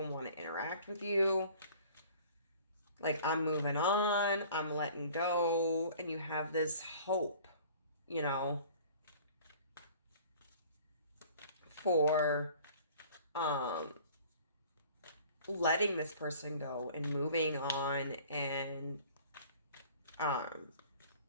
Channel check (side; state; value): both; inverted; correlation -0.49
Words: want to interact with you. Like, I'm moving on, I'm letting go, and you have this hope, you know, for letting this person go and moving on and